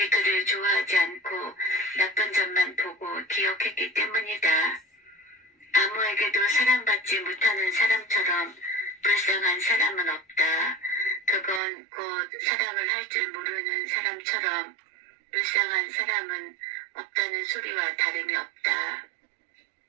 그를 좋아하지 않고 나쁜 점만 보고 기억했기 때문이다. 아무에게도 사랑받지 못하는 사람처럼 불쌍한 사람은 없다. 그건 곧 사랑을 할 줄 모르는 사람처럼 불쌍한 사람은 없다는 소리와 다름이 없다.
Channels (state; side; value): drops out; left; at 11.6 s